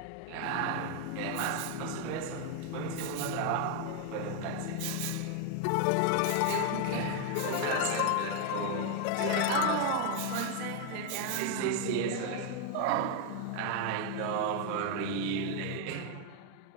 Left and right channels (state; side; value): different; both; correlation 0.01